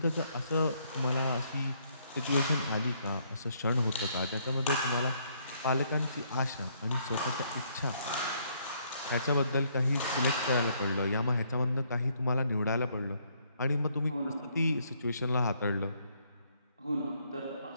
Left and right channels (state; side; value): inverted; both; correlation -0.69